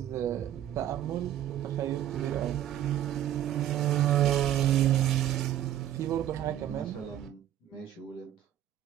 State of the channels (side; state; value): left; quieter; 11.7 dB